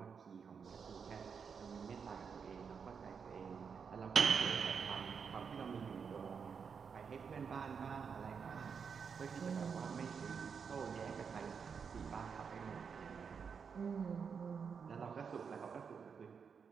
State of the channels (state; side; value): quieter; left; 6.3 dB